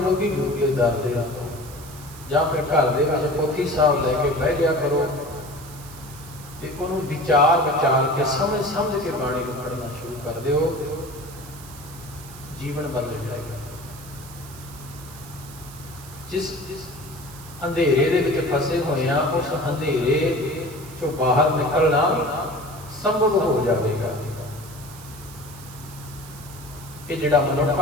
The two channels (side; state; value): right; noise; hiss, 17 dB below the sound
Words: ਗੁਰੂ ਦੇ ਦਰ ਦੇ ਤੋਂ। ਜਾਂ ਫਿਰ ਘਰ ਦੇ ਵਿੱਚ ਪੋਥੀ ਸਾਹਿਬ ਲੈ ਕੇ ਬਹਿ ਜਾ ਕਰੋ ਤੇ ਉਹਨੂੰ ਵਿਚਾਰ ਕੇ ਸਮਝ ਕੇ ਬਾਣੀ ਨੂੰ ਪੜ੍ਹਨਾ ਸ਼ੁਰੂ ਕਰ ਦਿਓ, ਜੀਵਨ ਬਦਲ ਜਾਏਗਾ। ਜਿਸ ਅੰਧੇਰੇ ਦੇ ਵਿੱਚ ਫਸੇ ਹੋਏ ਆ, ਉਸ ਅੰਧੇਰੇ ਚੋਂ ਬਾਹਰ ਨਿਕਲਣਾ ਸੰਭਵ ਹੋ ਜਾਵੇਗਾ। ਇਹ ਜਿਹੜਾ